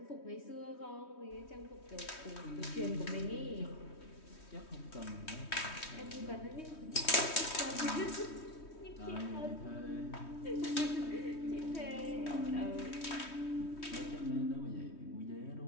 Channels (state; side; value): late; right; 3.2 ms